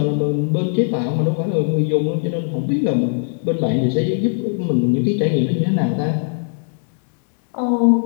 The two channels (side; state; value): right; silent; digital silence